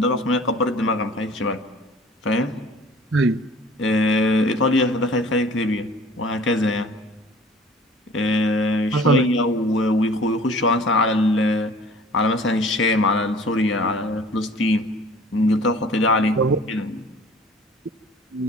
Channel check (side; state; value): both; normal; correlation 0.48